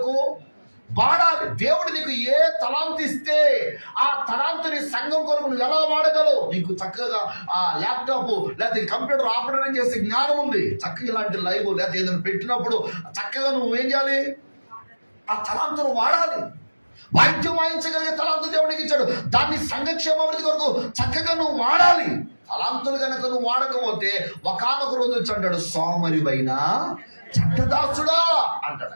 వాడాలి. దేవుడు నీకు ఏ తలాంతు ఇస్తే ఆ తలాంతుని సంఘం కొరకు నువ్వు ఎలా వాడగలవు? నీకు చక్కగా ఆ ల్యాప్టాప్ లేకపోతే కంప్యూటర్ ఆపరేషన్ చేసే జ్ఞానం ఉంది, చక్కగా ఇలాంటి లైవ్ లేకపోతే ఏదైనా పెట్టినప్పుడు చక్కగా నువ్వు ఏం చేయాలి? ఆ తలాంతును వాడాలి. వాయిద్యం వాయించగలిగే తలాంతు దేవుడికి ఇచ్చాడు, దాన్ని సంఘక్షేమాభివృద్ధి కొరకు చక్కగా నువ్వు వాడాలి. తలాంతులు కనుక నువ్వు వాడకపోతే ఒకానొక రోజు వచ్చి అంటాడు, సోమరివైన చెడ్డదాసుడా అంటాడు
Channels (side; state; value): both; inverted; correlation -1.00